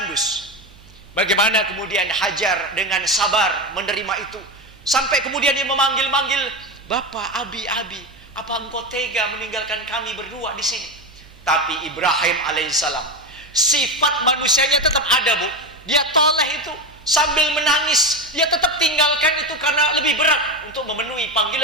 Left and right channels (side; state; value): right; noise; hum, 24 dB below the sound